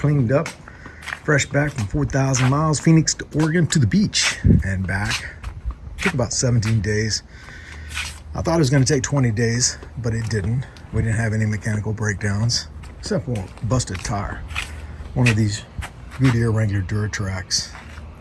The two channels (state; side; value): identical; both; correlation 1.00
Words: up, fresh back from 4,000 miles, Phoenix to Oregon to the beach and back. Took about 17 days. I thought it was going to take 20 days, but it didn't. We didn't have any mechanical breakdowns, except for a busted tire. One of these Goodyear Wrangler Duratracs